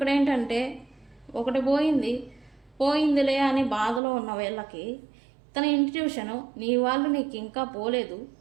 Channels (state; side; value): drops out; left; at 4.0 s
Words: ఏంటంటే ఒకటి పోయిందిలే అని బాధలో ఉన్న వీళ్ళకి తన ఇంట్యూషను నీ వాళ్ళు నీకు ఇంకా పోలేదు,